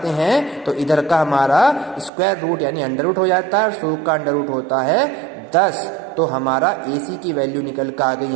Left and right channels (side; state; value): left; drops out; at 2.1 s